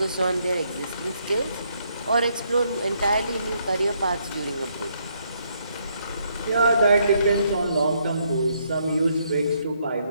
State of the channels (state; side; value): inverted; both; correlation -0.73